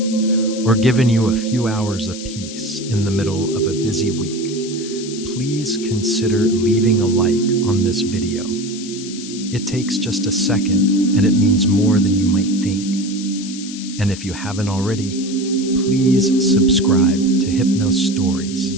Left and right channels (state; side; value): noise; left; hiss, 12 dB below the sound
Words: or given you a few hours of peace in the middle of a busy week, please consider leaving a like on this video. It takes just a second, and it means more than you might think. And if you haven't already, please subscribe to Hypnos Stories.